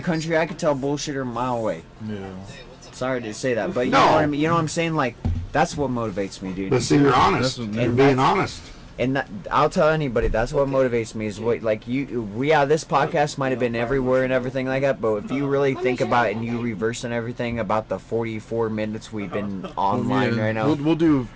country. I could tell bullshitter a mile away. Yeah. Sorry to say that, but you No. know what I mean. You know what I'm saying? Like, that's what motivates me, dude. But see, you're honest. That's- You're and being that's- honest. And that, I'll tell anybody, that's what motivates me. Is what, like, this podcast might have been everywhere and everything like that, but if you really think about it and you reverse and everything about the 44 minutes we've been online Yeah, right now. We'll do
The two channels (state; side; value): identical; both; correlation 1.00